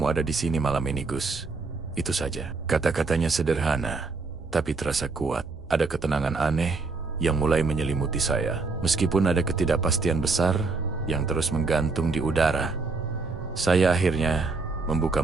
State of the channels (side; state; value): left; quieter; 4.1 dB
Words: ada di sini malam ini Gus. Itu saja." Kata-katanya sederhana, tapi terasa kuat. Ada ketenangan aneh yang mulai menyelimuti saya. Meskipun ada ketidakpastian besar yang terus menggantung di udara, saya akhirnya